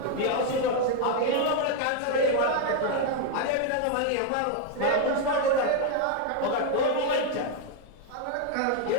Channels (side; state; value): both; different; correlation 0.01